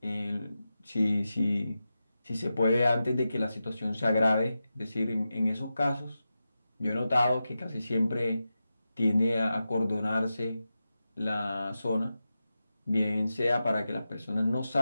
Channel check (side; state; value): both; inverted; correlation -0.91